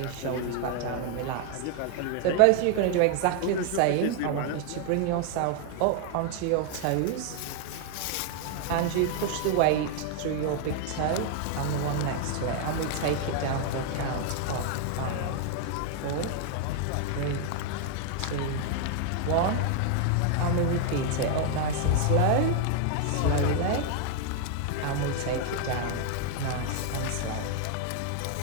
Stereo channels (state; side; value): different; both; correlation 0.00